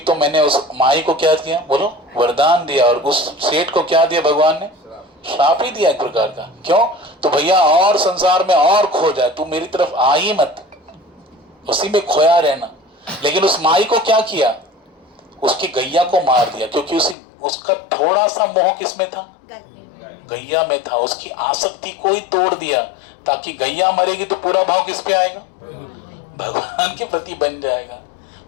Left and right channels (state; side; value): drops out; right; at 17.2 s